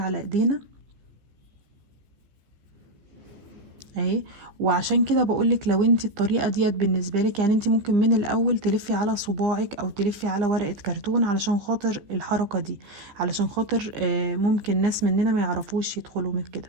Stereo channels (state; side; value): late; left; 15 ms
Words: ايدينا اهي. وعشان كده بقولك لو انت الطريقة ديت بالنسبة لك، يعني انت ممكن من الاول تلفي على صباعك او تلفي على ورقة كرتون علشان خاطر الحركة دي، علشان خاطر ممكن ناس مننا ما يعرفوش يدخلوا من كده.